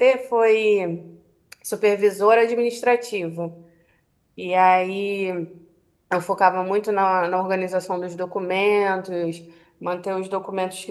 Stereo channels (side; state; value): both; identical; correlation 1.00